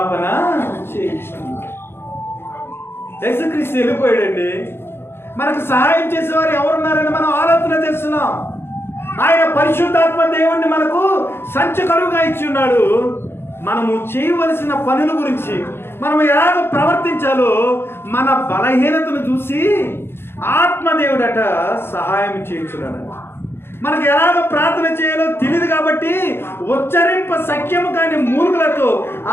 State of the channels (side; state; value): right; late; 0.11 ms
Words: చేయుచున్నాడు. యేసుక్రీస్తు వెళ్ళిపోయాడండి. మనకు సహాయం చేసేవారు ఎవరున్నారని మనం ఆలోచన చేస్తున్నాం. ఆయన పరిశుద్ధాత్మ దేవుణ్ణి మనకు సంచకరువుగా ఇచ్చి ఉన్నాడు. మనము చేయవలసిన పనుల గురించి, మనం ఎలాగ ప్రవర్తించాలో మన బలహీనతను చూసి ఆత్మదేవుడట సహాయం చేయించున్నాడు. మనకు ఎలాగ ప్రార్థన చేయాలో తెలియదు కాబట్టి ఉచ్చరింప సఖ్యము కాని మూర్ఖులతో